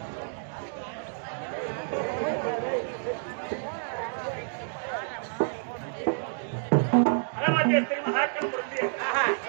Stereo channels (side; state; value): left; silent; 59 dB below the other